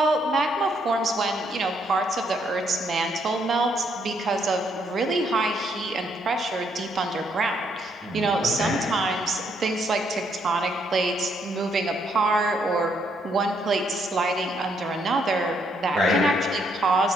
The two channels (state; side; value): normal; both; correlation 0.72